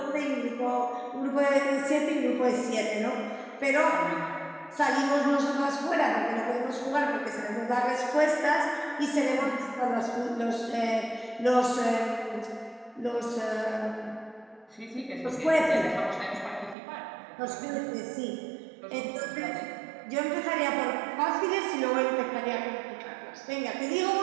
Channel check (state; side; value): drops out; left; at 16.8 s